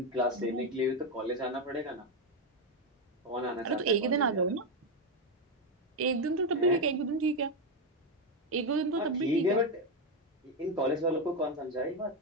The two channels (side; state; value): both; normal; correlation 0.07